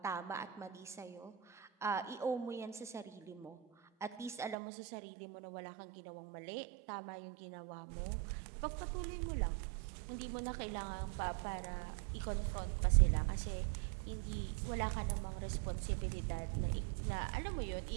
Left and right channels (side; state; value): left; drops out; at 4.5 s